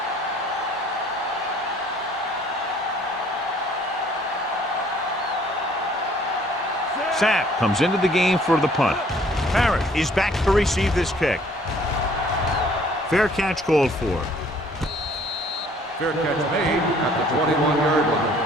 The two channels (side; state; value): both; normal; correlation 0.58